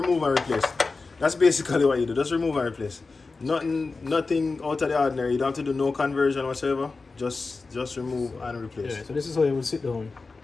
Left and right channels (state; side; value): quieter; right; 4.0 dB